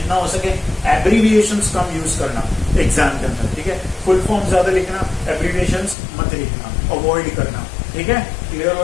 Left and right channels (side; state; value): right; drops out; at 6.0 s